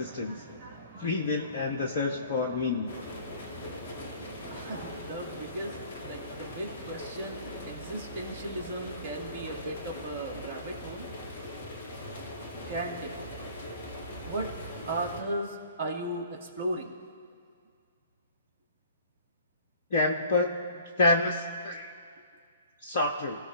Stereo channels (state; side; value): inverted; both; correlation -0.51